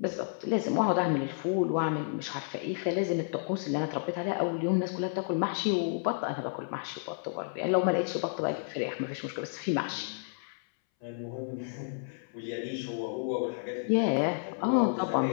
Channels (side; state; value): right; silent; 57 dB below the other